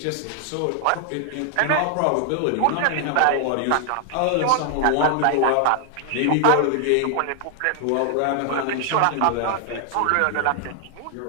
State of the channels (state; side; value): different; both; correlation 0.00